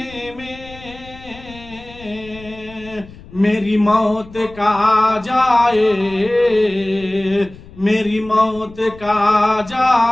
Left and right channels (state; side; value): noise; left; rumble, 19 dB below the sound